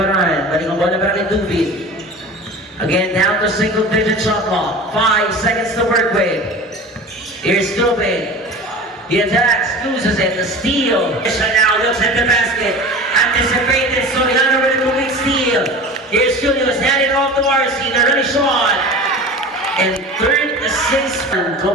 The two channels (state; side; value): normal; both; correlation 0.36